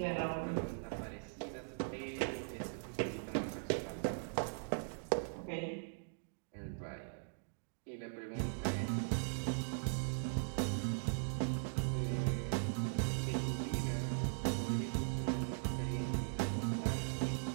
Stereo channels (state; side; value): silent; left; digital silence